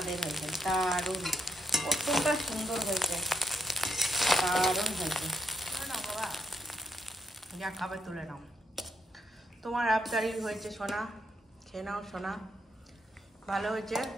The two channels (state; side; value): normal; both; correlation 0.77